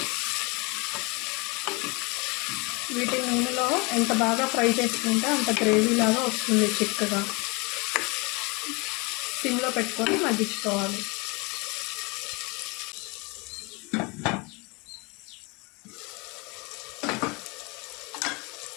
వీటి నూనెలో ఎంత బాగా ఫ్రై చేసుకుంటే అంత గ్రేవీ లాగా వస్తుంది చిక్కగా. సిమ్లో పెట్టుకొని మగ్గించుకోవాలి.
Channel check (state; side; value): quieter; right; 28.1 dB